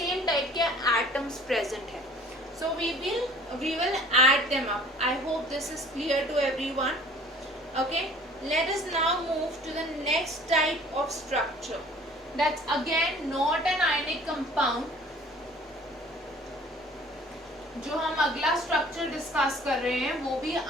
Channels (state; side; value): normal; both; correlation 0.50